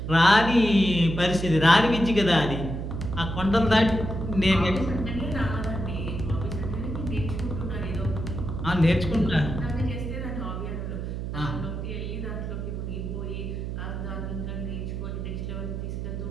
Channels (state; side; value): noise; right; hum, 5 dB below the sound